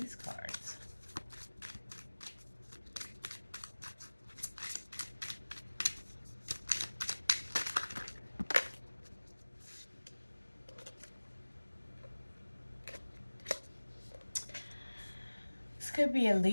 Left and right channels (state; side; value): inverted; both; correlation -1.00